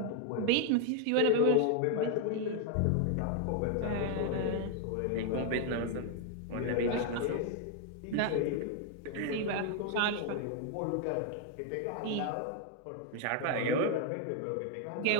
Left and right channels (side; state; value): both; different; correlation 0.00